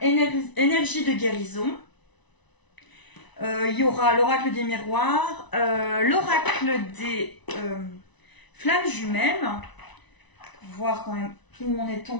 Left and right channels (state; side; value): late; right; 1.0 ms